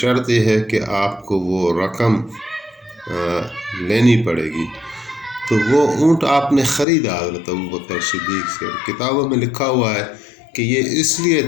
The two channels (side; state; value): right; drops out; at 6.9 s